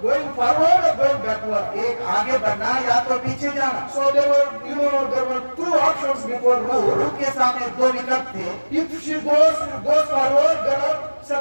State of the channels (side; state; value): both; inverted; correlation -1.00